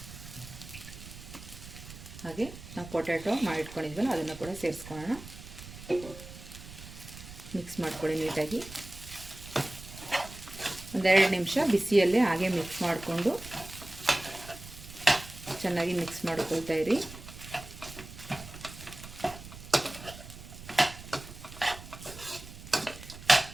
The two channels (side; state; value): right; noise; rumble, 15 dB below the sound